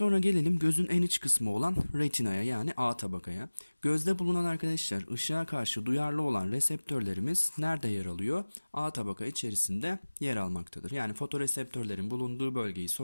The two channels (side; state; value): both; inverted; correlation -1.00